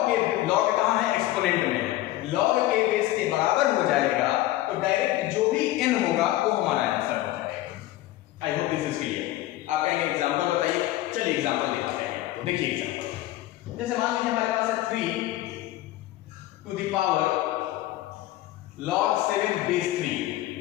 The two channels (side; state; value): right; quieter; 15.8 dB